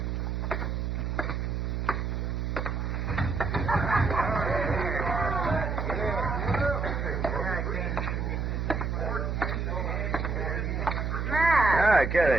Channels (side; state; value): right; noise; hum, 1 dB below the sound